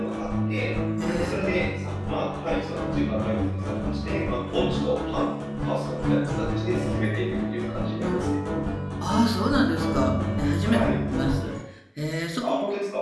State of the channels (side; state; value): both; identical; correlation 1.00